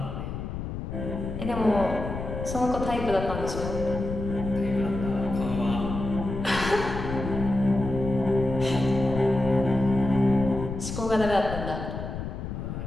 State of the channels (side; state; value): left; noise; rumble, 6 dB below the sound